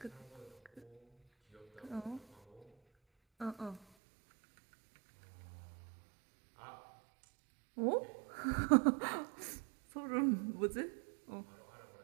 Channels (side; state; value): left; drops out; at 3.9 s